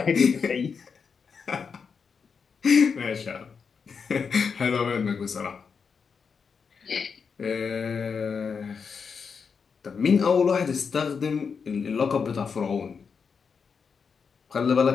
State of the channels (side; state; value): right; quieter; 5.8 dB